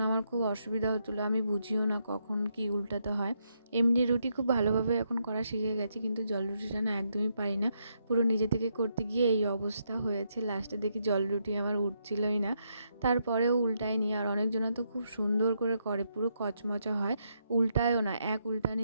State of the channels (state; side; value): inverted; both; correlation -0.78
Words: আমার খুব অসুবিধা হচ্ছিলো। আমি বুঝিও না কখন কি উল্টাতে হয়। এমনি রুটি খুব ভালোভাবে এখন করা শিখে গেছি, কিন্তু জল রুটিটা না একদমই পারি না। পুরো নিজে থেকে করতে গিয়ে এই অবস্থা হয়েছে। লাস্টে দেখি জল রুটি আমার উঠছিলই না, তারপরেও উল্টায়নি। আর অনেকজনা তো খুব সুন্দর করে করে, পুরো কচমচা হয়, উল্টায়ও না, এক